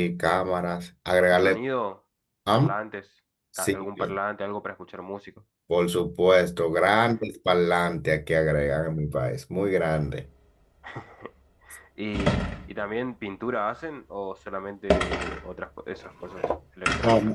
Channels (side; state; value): both; identical; correlation 1.00